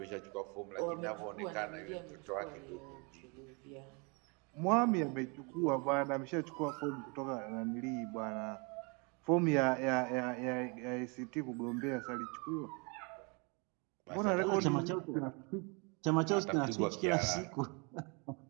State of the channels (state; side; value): quieter; left; 32.2 dB